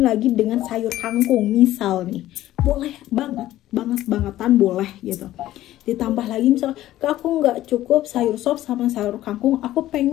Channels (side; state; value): right; quieter; 14.4 dB